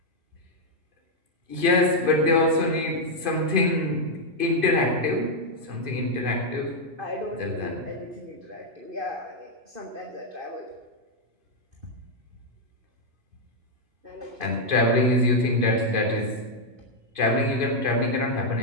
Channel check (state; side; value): late; left; 2.5 ms